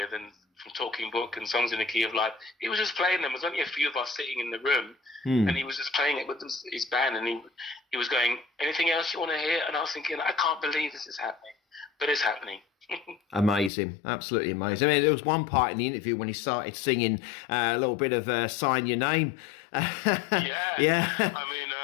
and from Talking Book and Songs in the Key of Life. He was just playing them. There was only a few of us sitting in the room, and he was just playing it with his band, and he was going, anything else you want to hear? And I was thinking, I can't believe this is happening, but it's happening. Amazing, absolutely amazing. I mean, there was one part in the interview when he started singing a little bit of Sign Your Name. Yeah. I mean,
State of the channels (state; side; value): drops out; right; at 13.7 s